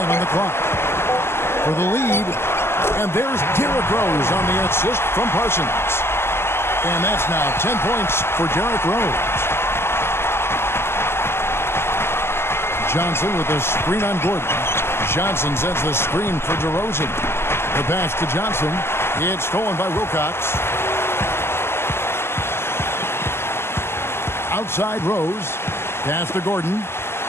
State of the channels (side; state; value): right; late; 0.12 ms